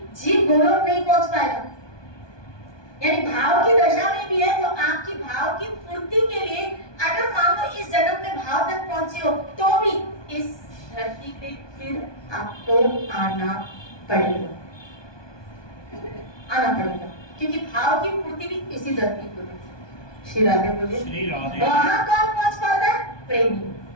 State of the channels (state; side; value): late; right; 1.2 ms